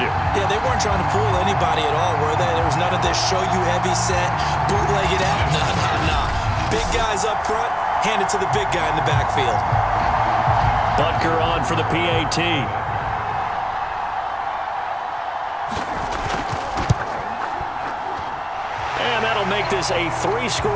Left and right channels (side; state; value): both; identical; correlation 1.00